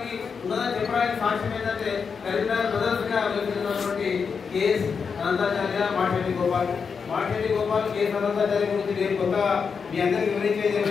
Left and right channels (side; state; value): right; quieter; 5.8 dB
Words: ఉన్నదని చెప్పడానికి సాక్ష్యం ఏంటంటే కరీంనగర్ బ్రదర్స్ గా వెళ్తున్నటువంటి కేఎస్ అనంతాచార్య, మాటెల్లి గోపాల్. కేఎస్ అనంతాచార్య గురించి నేను కొత్తగా మీ అందరికీ వివరించేది